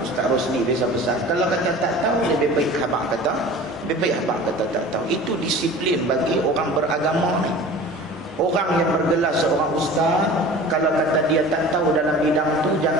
Rosli biasa pesan, kalau kata tak tahu lebih baik habaq kata tak tahu. Itu disiplin bagi orang beragama ni. Orang yang bergelar seorang ustaz, kalau kata dia tak tahu dalam bidang tu,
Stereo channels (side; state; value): both; normal; correlation 0.40